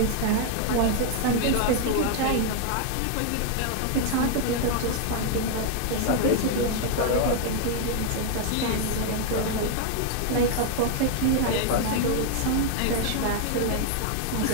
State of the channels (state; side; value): different; both; correlation 0.00